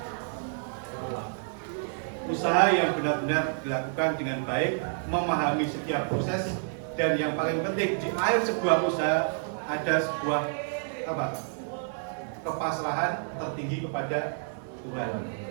Usaha yang benar-benar dilakukan dengan baik, memahami setiap proses, dan yang paling penting di akhir sebuah usaha ada sebuah apa? Kepasrahan tertinggi kepada Tuhan.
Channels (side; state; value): left; silent; digital silence